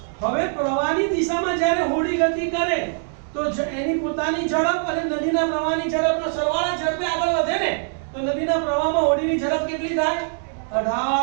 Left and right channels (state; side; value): silent; left; 64 dB below the other